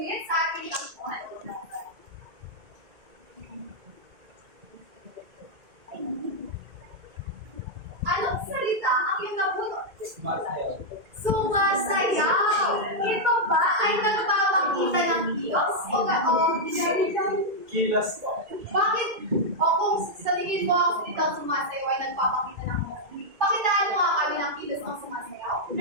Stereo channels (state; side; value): late; left; 2.2 ms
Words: sa ating takbuhan? Anong salita ang iyong nabunot? Sumasayaw. Ito ba ay nagpapakita ng kilos o Kilos po. bakit? O kung sa tingin mo ang salitang sumasayaw ay nagpapakita ng kilos, pakitaan mo nga kami ng kilos ng sumasayaw.